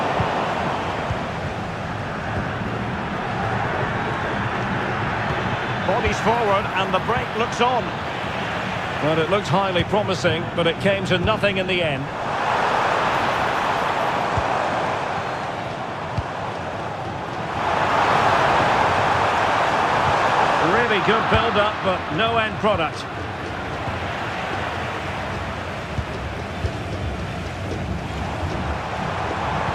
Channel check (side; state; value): both; identical; correlation 1.00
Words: Bodies forward and the break looks on. Well, it looked highly promising, but it came to nothing in the end. Really good build-up, but no end product.